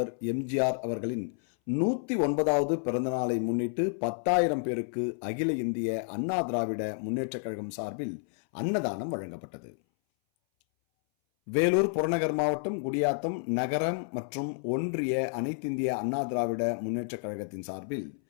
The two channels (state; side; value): silent; right; 58 dB below the other